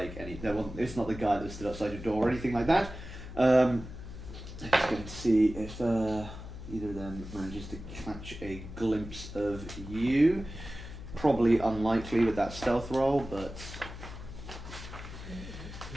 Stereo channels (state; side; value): noise; left; hum, 11 dB below the sound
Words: it's not the guy that stood outside your door or anything like that. I'm just going to see if either of them manages to catch a glimpse of you. Probably unlikely with that stealth roll, but